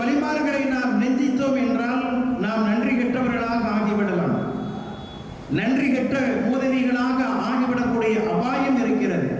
வலிமார்களை நாம் நிந்தித்தோம் என்றால் நாம் நன்றி கெட்டவர்களாக ஆகிவிடலாம். நன்றி கெட்ட உதவிகளாக ஆகிவிடக்கூடிய அபாயம் இருக்கிறது.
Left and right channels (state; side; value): identical; both; correlation 1.00